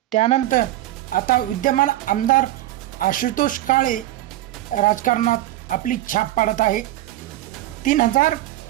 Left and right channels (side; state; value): left; quieter; 15.3 dB